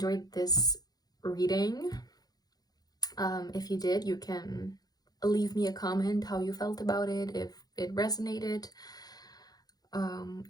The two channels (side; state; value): right; late; 0.19 ms